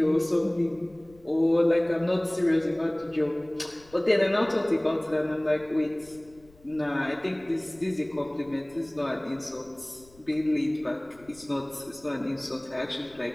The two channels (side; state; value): left; noise; rumble, 27 dB below the sound